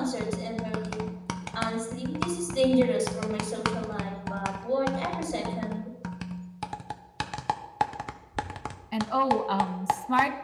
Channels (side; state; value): both; identical; correlation 1.00